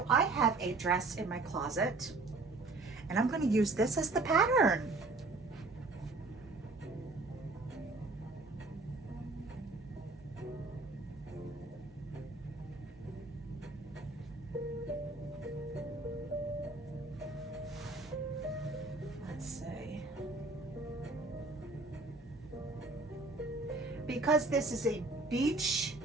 I have a dress in my closet and I'm gonna use this as the pattern. Let's see. Because this is a beach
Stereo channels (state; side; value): quieter; left; 3.3 dB